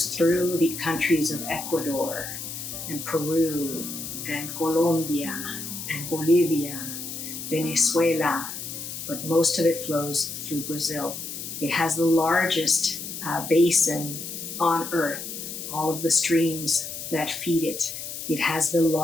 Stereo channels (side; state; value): left; noise; hiss, 8 dB below the sound